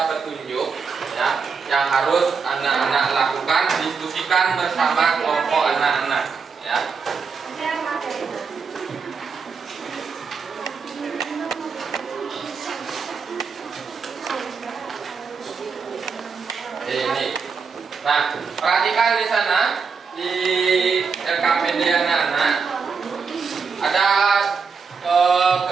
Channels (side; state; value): left; quieter; 5.5 dB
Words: petunjuk ya yang harus anak-anak lakukan, diskusikan bersama kelompok anak-anak. Ya. Ini. Nah, perhatikan di sana di LKPD anak-anak ada